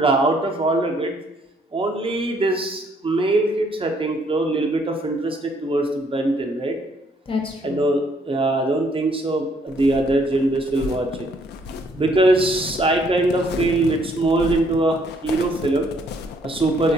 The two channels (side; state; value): both; normal; correlation 0.66